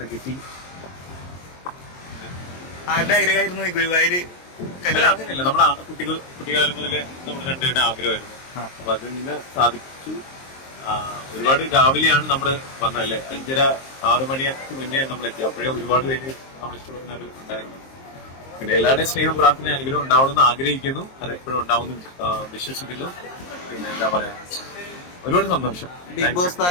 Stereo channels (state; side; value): late; right; 23 ms